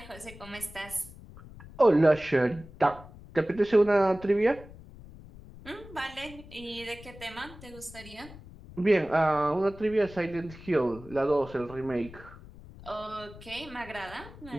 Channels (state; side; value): noise; left; rumble, 18 dB below the sound